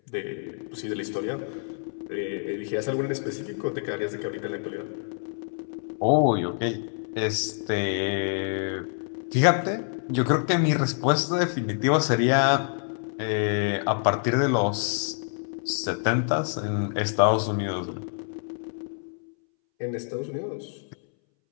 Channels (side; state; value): right; silent; 60 dB below the other